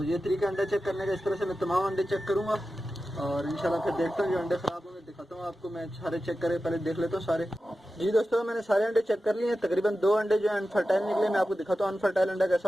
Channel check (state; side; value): normal; both; correlation 0.93